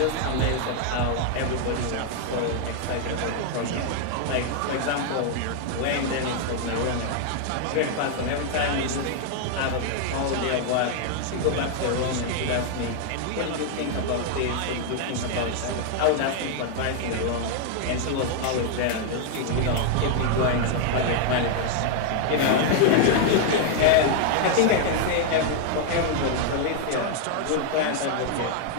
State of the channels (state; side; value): different; both; correlation 0.00